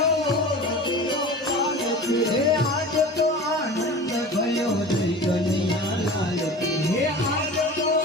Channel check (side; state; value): both; normal; correlation 0.36